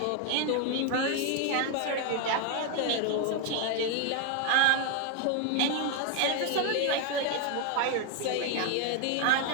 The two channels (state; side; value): different; both; correlation 0.01